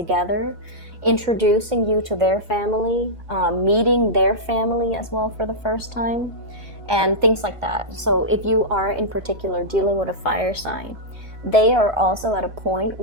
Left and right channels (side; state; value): left; late; 1.4 ms